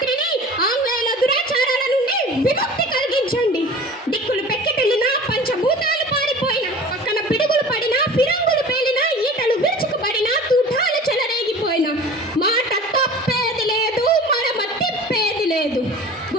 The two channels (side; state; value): both; normal; correlation 0.40